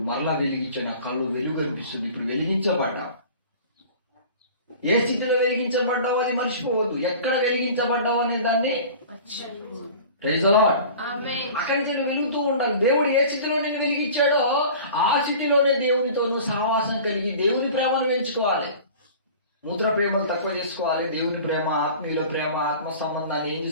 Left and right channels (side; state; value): both; inverted; correlation -0.41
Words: మరలా వెలిగించే నా కళ్ళు వెలుగు అనిపిస్తుంది. ఇప్పుడు వెలిగించబడ్డా. ఏ స్థితిలో వెలిగించబడ్డావో అది మర్చిపోవద్దు. ఎక్కడ వెలిగించబడ్డావు అనే దాన్ని అక్కడి నుంచి వెలుగుతూ ఉండాలి. దేవుడు ఏ స్థితిలో నేను వెలిగించాడో ఆ స్థితిలోనే దేవునితో సహవాసం కలిగి దేవుని ప్రేమను పెంచుకోవాలి. మూత్ర ప్రేమలు తక్కువ చేసుకోవాలి. దేవుని ప్రేమ, ఆత్మీయుల ప్రేమ, ఆత్మ సంబంధాన్ని ఏం